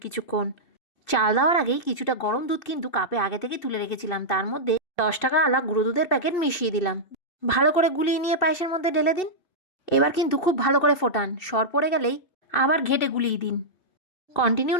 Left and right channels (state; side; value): late; right; 2.7 ms